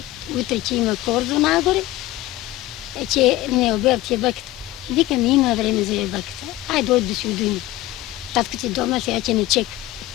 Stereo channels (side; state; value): right; quieter; 16.0 dB